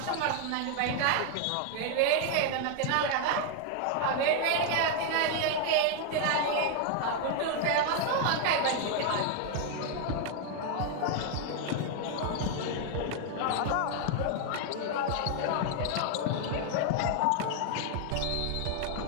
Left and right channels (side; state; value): both; different; correlation 0.00